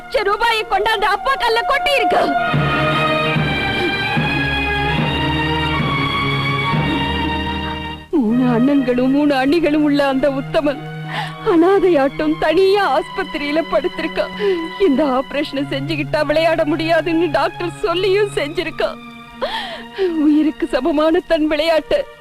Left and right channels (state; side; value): identical; both; correlation 1.00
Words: கொண்டாந்து அப்பா கல்ல கொட்டி இருக்கான். 3 அண்ணன்களும் 3 அண்ணிகளும் உள்ள அந்த உத்தமன் அனாதையாட்டம் தனியா ஆஸ்பத்திரியில படுத்திருக்கான். இந்த ஆபரேஷனை செஞ்சுக்கிட்டா விளையாட முடியாதுன்னு டாக்டர் சொல்லியும் செஞ்சிருக்கான். உயிருக்கு சமமான தன் விளையாட்டு